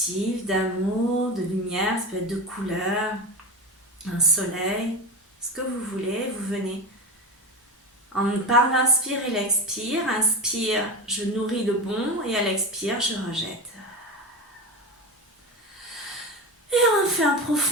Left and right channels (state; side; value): normal; both; correlation 0.23